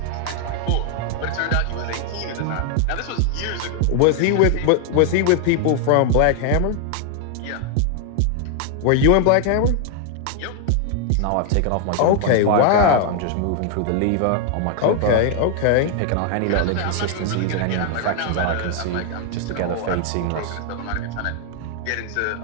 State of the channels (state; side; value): different; both; correlation 0.00